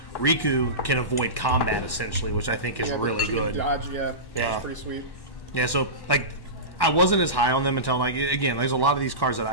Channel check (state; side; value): late; right; 1.1 ms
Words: Riku can avoid combat essentially, which I think is really good. Dodge, yeah. Yeah. Pretty sweet. Yeah, so like, I wasn't as high on them until, like, again, there's a lot of these cards